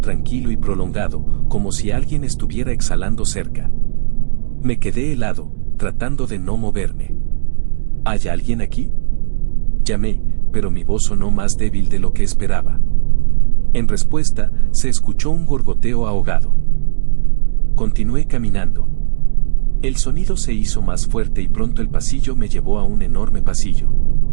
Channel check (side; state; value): left; silent; digital silence